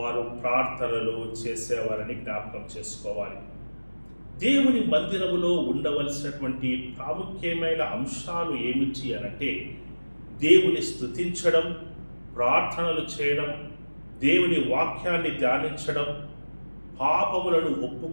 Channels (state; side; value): inverted; both; correlation -1.00